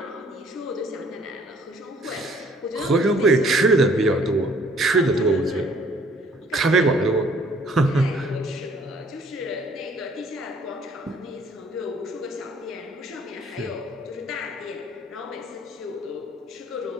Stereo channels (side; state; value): both; normal; correlation 0.59